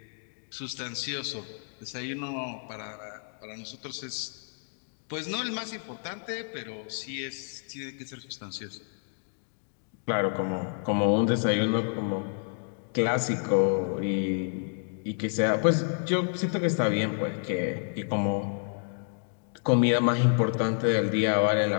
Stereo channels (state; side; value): silent; right; digital silence